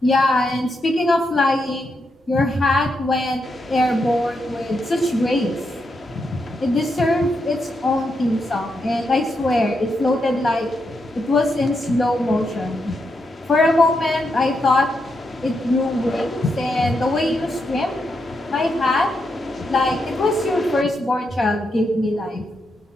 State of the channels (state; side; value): normal; both; correlation 0.83